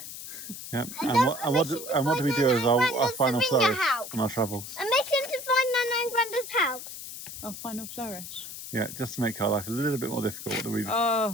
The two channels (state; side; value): noise; left; hiss, 10 dB below the sound